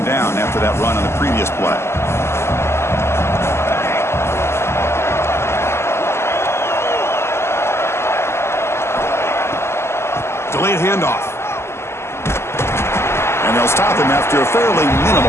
down after that run on the previous play. Delayed handoff. And they'll stop him after a fairly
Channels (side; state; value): right; late; 0.12 ms